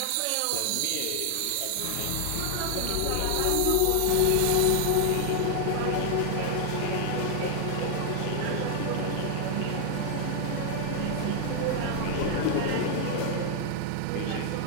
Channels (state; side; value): different; both; correlation 0.00